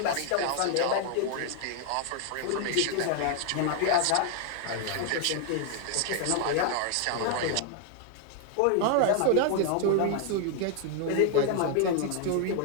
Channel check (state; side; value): different; both; correlation 0.00